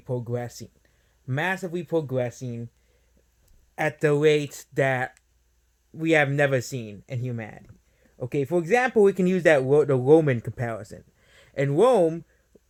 at the rate that we have never seen in humanity. Okay, for example, we can use the Roman comparison. In Rome,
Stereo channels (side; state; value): both; identical; correlation 1.00